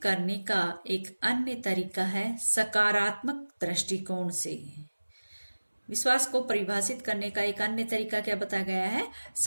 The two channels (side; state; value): both; inverted; correlation -1.00